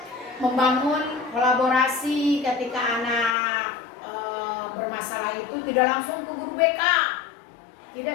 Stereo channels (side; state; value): right; drops out; at 3.4 s